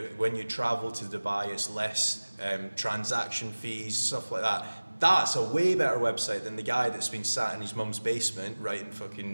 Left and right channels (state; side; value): inverted; both; correlation -1.00